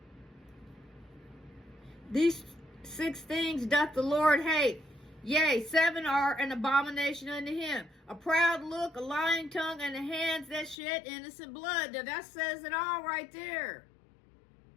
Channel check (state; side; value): drops out; right; at 10.8 s